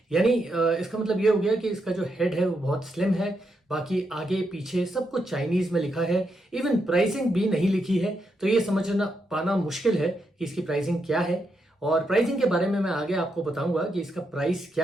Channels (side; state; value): both; normal; correlation 0.82